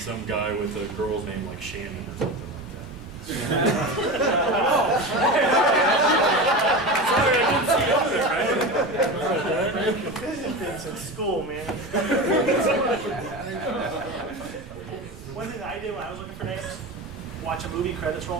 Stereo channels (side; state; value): right; noise; rumble, 17 dB below the sound